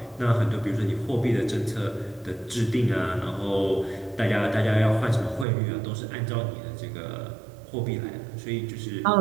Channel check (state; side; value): drops out; left; at 5.5 s